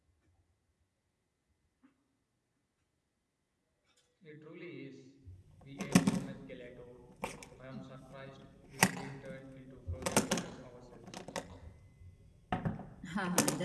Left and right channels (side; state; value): both; identical; correlation 1.00